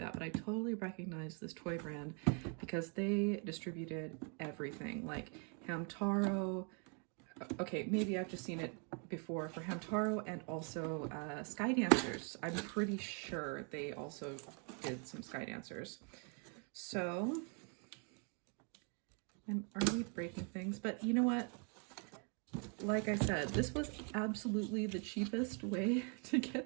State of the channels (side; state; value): left; quieter; 39.1 dB